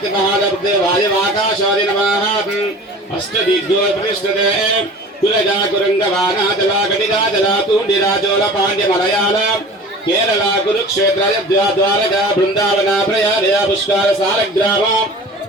नमः अष्टदिग्गो प्रतिष्ठते कुलजा कुरंगवाना जला गणिगा जला तूंडिरा चोल पांड्य मलयाल केरला कुरुक्षेत्र द्वारका वृंदावन प्रयाग पुष्कर सालग्राम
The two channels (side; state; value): both; normal; correlation 0.40